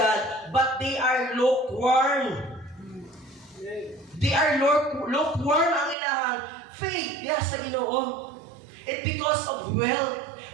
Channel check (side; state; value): left; drops out; at 6.0 s